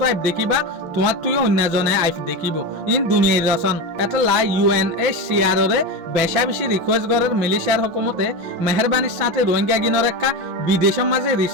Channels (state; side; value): late; left; 6.1 ms